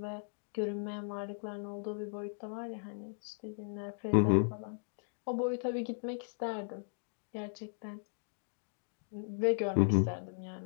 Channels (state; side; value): silent; right; digital silence